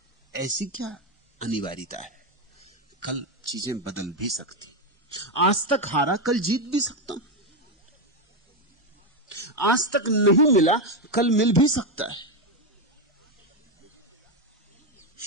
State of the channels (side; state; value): both; normal; correlation 0.08